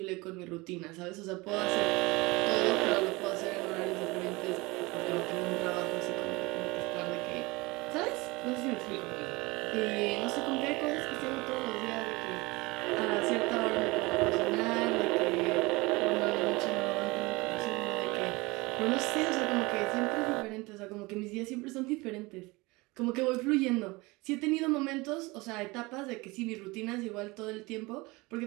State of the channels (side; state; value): left; quieter; 23.5 dB